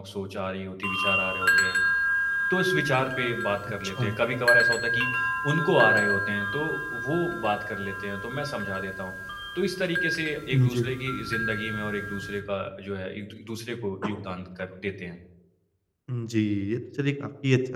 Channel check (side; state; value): both; identical; correlation 1.00